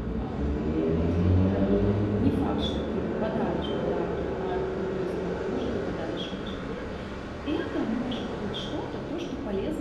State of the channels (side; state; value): both; identical; correlation 1.00